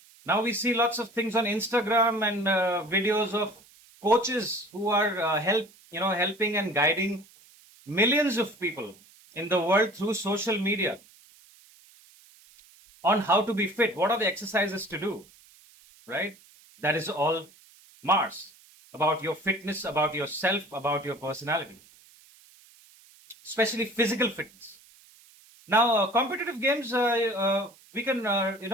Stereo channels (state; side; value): noise; right; hiss, 26 dB below the sound